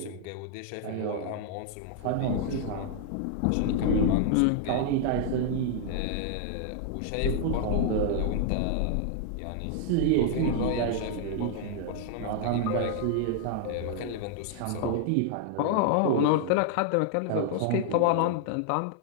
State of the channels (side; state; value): both; different; correlation 0.00